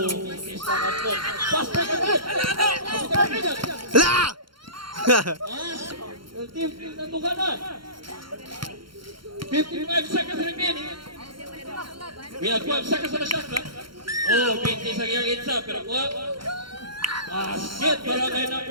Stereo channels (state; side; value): late; left; 0.73 ms